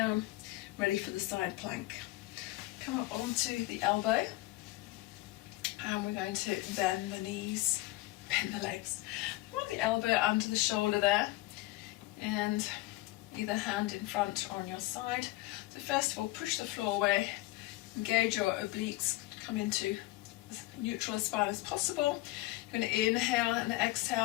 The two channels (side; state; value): right; quieter; 19.2 dB